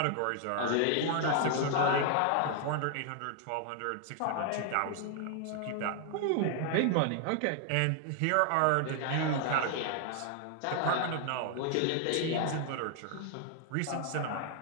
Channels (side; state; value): both; different; correlation 0.00